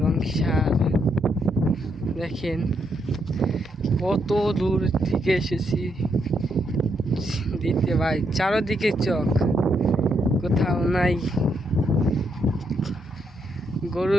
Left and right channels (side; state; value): both; normal; correlation 0.78